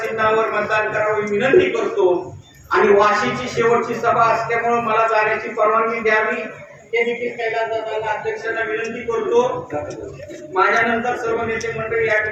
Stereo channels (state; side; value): identical; both; correlation 1.00